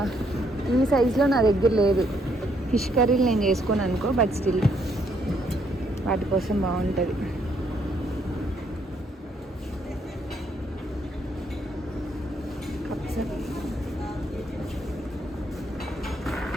ఈ సైజులో నా దగ్గర లేదు. ఫిష్ కర్రీలు నేను చేసుకోను అనుకో, బట్ స్టిల్ వాటి కోసం బాగుంటుంది. కప్స్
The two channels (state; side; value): normal; both; correlation 0.72